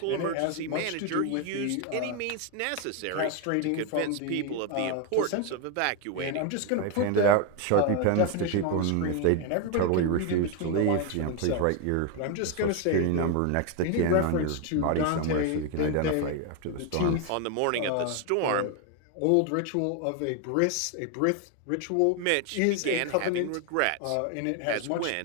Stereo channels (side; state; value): both; different; correlation 0.01